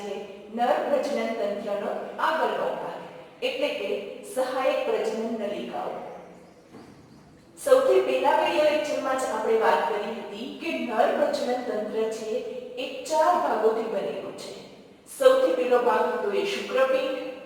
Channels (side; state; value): both; identical; correlation 1.00